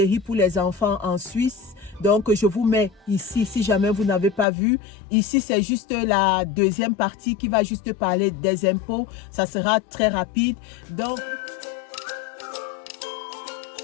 pour les enfants en Suisse. Donc, je vous mets ici, si jamais vous n'avez pas vu. Ici, c'est juste la deuxième partie qui va juste parler des impôts. Ça sera très rapide. Donc,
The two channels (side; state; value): right; drops out; at 4.5 s